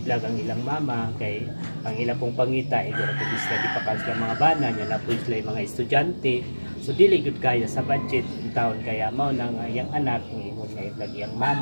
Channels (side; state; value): both; inverted; correlation -1.00